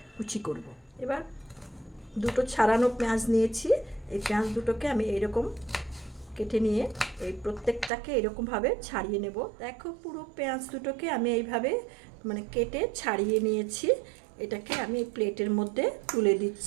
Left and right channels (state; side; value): drops out; left; at 7.9 s